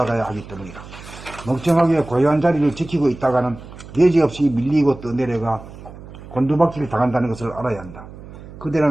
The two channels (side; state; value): right; noise; hum, 16 dB below the sound